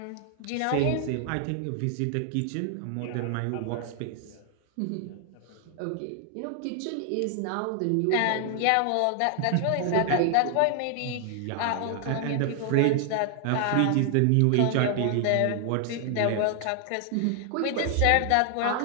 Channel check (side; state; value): both; different; correlation 0.00